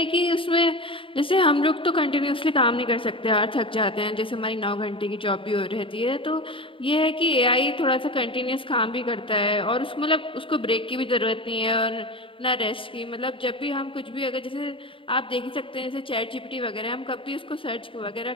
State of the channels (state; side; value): late; right; 0.25 ms